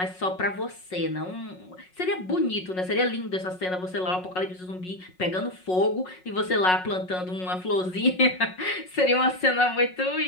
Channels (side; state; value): right; late; 5.5 ms